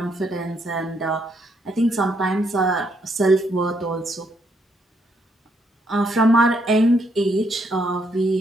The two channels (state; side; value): normal; both; correlation 0.74